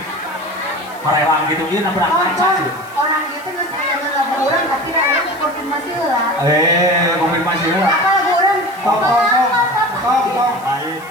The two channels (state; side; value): noise; left; hiss, 23 dB below the sound